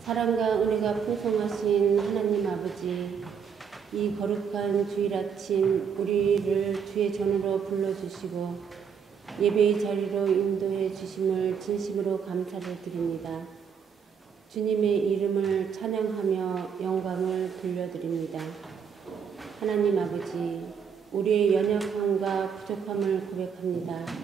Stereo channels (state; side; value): quieter; left; 6.9 dB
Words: 사랑과 은혜가 풍성하신 하나님 아버지, 이 거룩한 주일 아침 우리를 주의 전으로 불러주시고 예배의 자리로 인도해 주심을 진심으로 감사를 드립니다. 주님의 이름을 찬양하며 영광을 돌려드립니다. 하나님 아버지, 우리의 연약함과 부족함을 고백합니다.